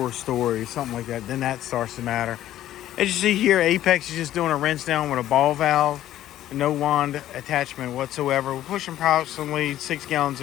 stories, something like that, then that starts to matter. As you see here, Apex is just doing a rinse down with a ball valve, no wand attachment whatsoever. We're pushing approximately 6 gallons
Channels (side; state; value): right; quieter; 13.0 dB